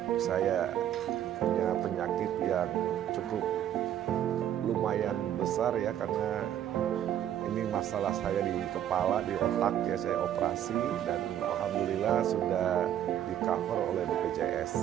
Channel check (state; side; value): quieter; left; 10.9 dB